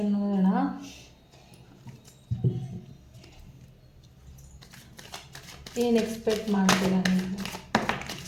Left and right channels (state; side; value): identical; both; correlation 1.00